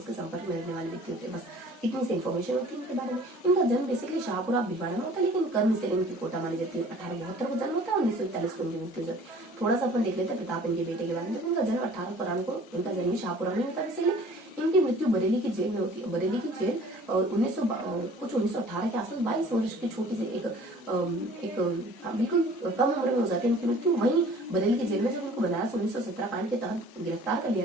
के संपर्क में रहने वाले व्यक्ति होते हैं। बस इतनी सी इन्फॉर्मेशन होती है इनके बारे में। इनका जन्म बेसिकली शाहपुरा भिलवाड़ा में होता है, लेकिन कर्म से इनकी कोटा मानी जाती है। 1872 को जन्म होता है, 1941 को इनकी मृत्यु हो जाती है। थोड़ा सा अपन देख लेते हैं प्रताप इनके बेटे के बारे में। देखो इनका जन्म 1893 को, इनका जन्म शाहपुरा में होता है। बेसिकली इनकी मृत्यु बरेली की जेल में होती है। बरेली की जेल 1918 के आसपास 22 वर्ष की छोटी सी एक बिल्कुल कम उम्र में हो जाती है इनकी मृत्यु। वहीं बरेली की जेल में जब इनको बनारस 1917 कांड के तहत गिरफ्तार कर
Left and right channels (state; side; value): normal; both; correlation 0.49